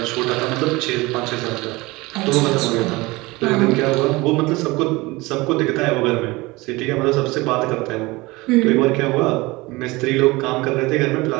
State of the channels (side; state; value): left; quieter; 22.1 dB